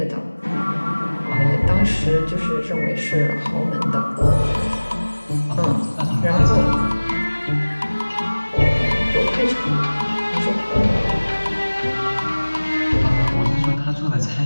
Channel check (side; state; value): both; inverted; correlation -1.00